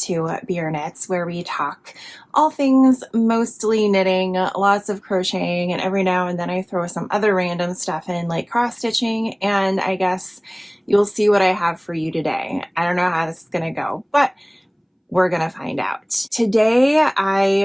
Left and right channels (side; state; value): both; identical; correlation 1.00